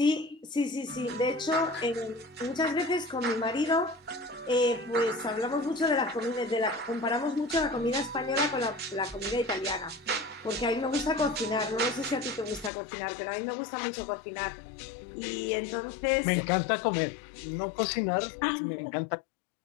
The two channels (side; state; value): right; drops out; at 12.7 s